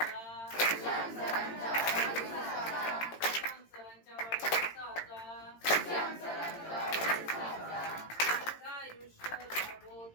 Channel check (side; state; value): right; late; 18 ms